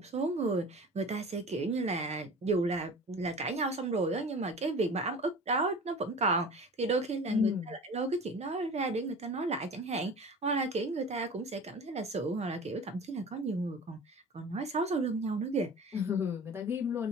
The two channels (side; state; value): both; normal; correlation 0.38